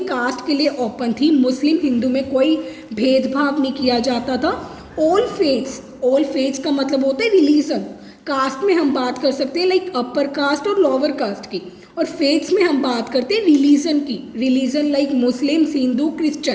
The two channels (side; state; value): both; identical; correlation 1.00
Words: के लिए ओपन थी. मुस्लिम हिंदू में कोई भेदभाव नहीं किया जाता था. ऑल फेथ्स का मतलब होता है रिलीजन. कास्ट में हम बात कर सकते हैं लाइक अपर कास्ट और लोअर कास्ट की, और फेथ्स में हम बात करते हैं रिलीजन की. रिलीजन लाइक मुस्लिम, हिंदू,